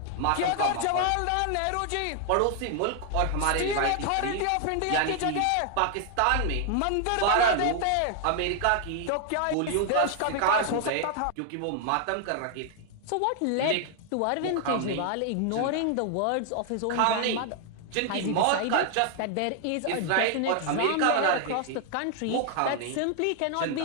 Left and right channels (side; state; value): both; different; correlation 0.00